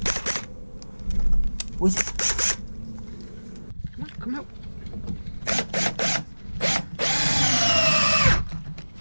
What's it? Come on, come out.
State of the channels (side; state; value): both; inverted; correlation -1.00